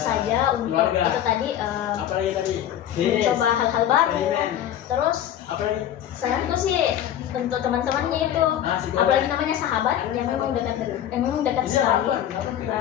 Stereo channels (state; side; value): quieter; right; 10.9 dB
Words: untuk itu tadi mencoba hal-hal baru. Terus saranku sih untuk teman-temannya itu, apalagi namanya sahabat yang memang dekat sekali,